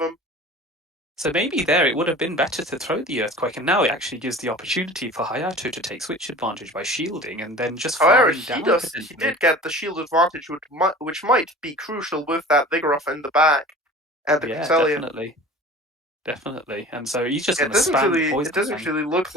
so maybe there it would have been better to throw the earthquake, and now it actually gives the opportunity for Hayato to take switch advantage by shielding and then just However, farming down he potentially. did get the shield advantage, which might be crucial with that Vigoroth in the back and the Yeah, Cresselia. definitely. Definitely. And so he's just Yeah, going to spam the it poison doesn't fang. really look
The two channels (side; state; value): both; normal; correlation 0.41